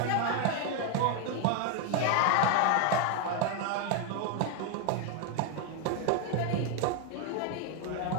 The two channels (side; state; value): both; different; correlation 0.01